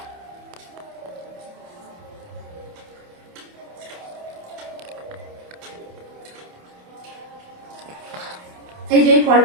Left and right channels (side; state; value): left; late; 28 ms